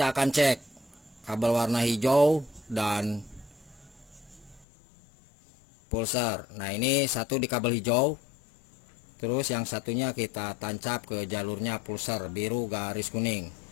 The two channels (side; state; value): right; drops out; at 4.7 s